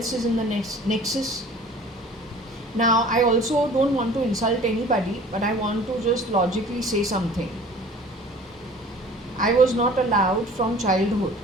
is in the nexus. Now, I also don't want to insult anybody, but I want to just logically say something. I was not allowed from childhood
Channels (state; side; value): normal; both; correlation 0.47